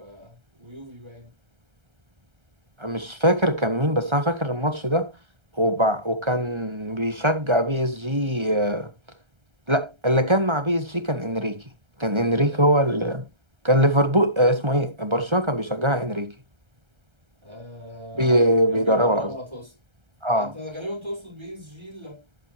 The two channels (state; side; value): late; left; 1.3 ms